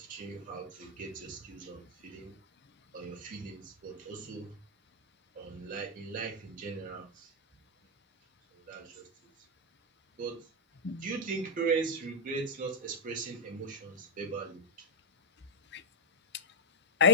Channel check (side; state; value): both; normal; correlation -0.04